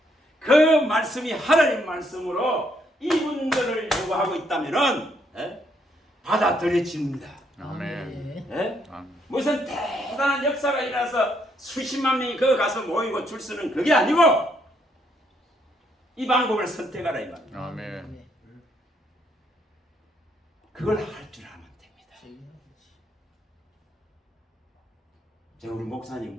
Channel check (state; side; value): normal; both; correlation 0.72